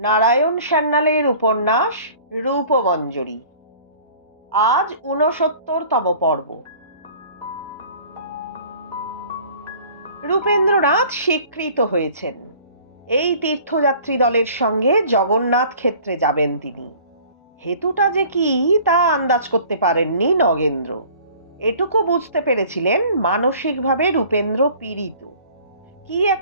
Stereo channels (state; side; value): inverted; both; correlation -0.49